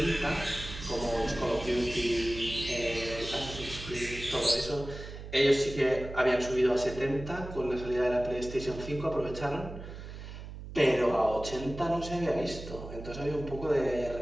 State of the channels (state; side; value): noise; right; hum, 11 dB below the sound